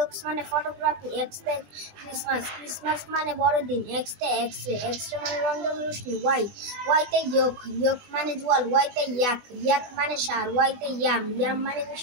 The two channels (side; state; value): left; late; 20 ms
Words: মানে ফটোগ্রাফি। এক্সতে ক্রিসমাস। ক্রিসমাস মানে বড়দিন। এক্সতে এক্সরে। এক্সরে মানে রঞ্জন রশ্মি। ওয়াইতে ইয়ক। ইয়ক মানে জোয়াল। ওয়াইতে ইয়াক। ইয়াক মানে সার। ওয়াইতে ইয়াম। ইয়াম মানে